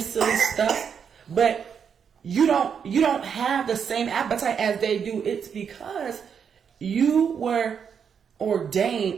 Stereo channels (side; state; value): left; quieter; 7.2 dB